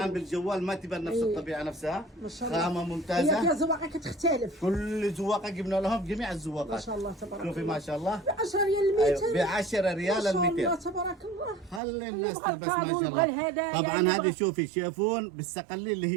بالجوال ما تبان نفس الطبيعه نفسها. خامه ممتازه. هي فيها زواقه كتختلف. كل زواقه جبنا لهم جميع الزواقات. ما شاء الله تبارك الله. شوفي ما شاء الله ب 10 ريال المتر. ب 10 ريال ال 200. ما شاء الله تبارك الله. خلي الناس تلبس ما شاء الله. طبعا هذه شوفي شيفون بالسقلي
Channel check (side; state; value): left; drops out; at 11.8 s